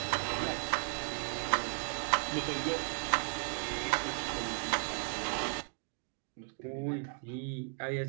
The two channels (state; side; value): silent; left; 54 dB below the other